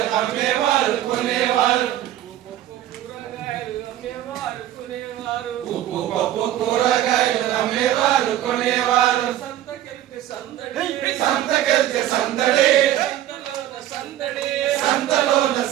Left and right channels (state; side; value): quieter; left; 12.7 dB